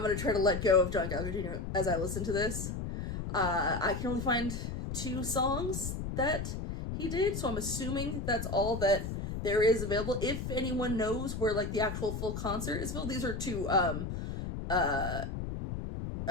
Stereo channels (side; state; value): left; noise; rumble, 5 dB below the sound